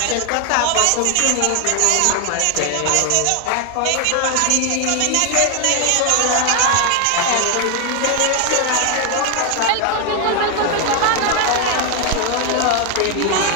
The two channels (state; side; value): different; both; correlation 0.01